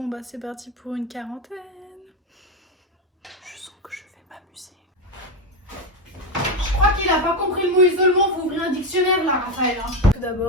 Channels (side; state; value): both; normal; correlation 0.12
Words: bah c'est parti pour une quarantaine. Je sens que je vais m'amuser. Je crois qu'il a pas compris le mot isolement, faut ouvrir un dictionnaire là, Raphaël. Tout